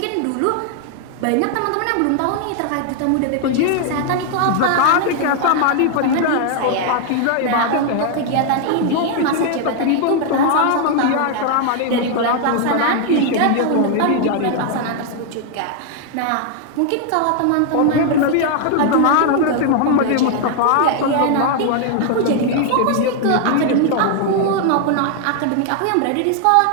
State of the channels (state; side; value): different; both; correlation 0.00